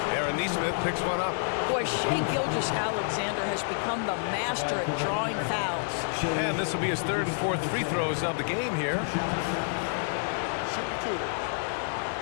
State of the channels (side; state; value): right; silent; 56 dB below the other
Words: Aaron Nesmith picks one up. Boy, Shai Gilgeous-Alexander has become the master at drawing fouls. And this will be his 3rd and 4th free throws of the game here. Shoot 2.